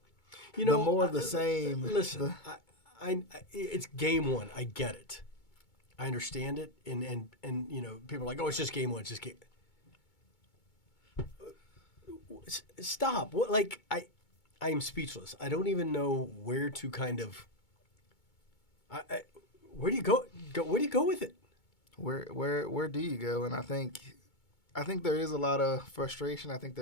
more of the same. Listen, it's game one. I get it. I understand it, and people are like, oh, it's just game one. It's just game. Stop. What? Like I am speechless. I don't even know where to kind of. Where do you go? Where do you go with it? Where do you go? And I think there is a lot of frustration. I think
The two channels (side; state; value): right; late; 2.2 ms